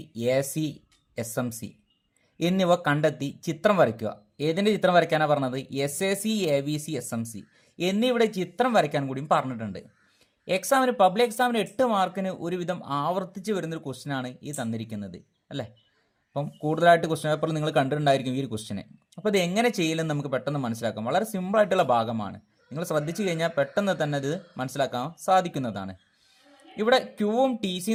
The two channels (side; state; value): both; identical; correlation 1.00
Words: A C, S M C എന്നിവ കണ്ടെത്തി ചിത്രം വരയ്ക്കുക. ഏതിൻ്റെ ചിത്രം വരയ്ക്കാനാണ് പറഞ്ഞത്? S A C, A V C, S M C എന്നിവിടെ ചിത്രം വരയ്ക്കാൻ കൂടിയും പറഞ്ഞിട്ടുണ്ട്. പബ്ലിക് എക്സാമിന് 8 മാർക്കിന് ഒരുവിധം ആവർത്തിച്ച് വരുന്നൊരു ക്വസ്റ്റ്യനാണ് ഈ തന്നിരിക്കുന്നത് അല്ലേ. അപ്പം കൂടുതലായിട്ട് ക്വസ്റ്റ്യൻ പേപ്പറിൽ നിങ്ങൾ കണ്ടിട്ടുണ്ടായിരിക്കും ഈ ഒരു ക്വസ്റ്റ്യനെ. അപ്പോൾ ഇത് എങ്ങനെ ചെയ്യില്ലെന്ന് നമുക്ക് പെട്ടെന്ന് മനസ്സിലാക്കാം. വളരെ സിമ്പിളായിട്ടുള്ള ഭാഗമാണ്. നിങ്ങൾ ശ്രദ്ധിച്ചു കഴിഞ്ഞാൽ പെട്ടെന്ന് തന്നെ ഇത് മനസ്സിലാക്കാൻ സാധിക്കുന്നതാണ്. ഇവിടെ ക്യൂവും ടി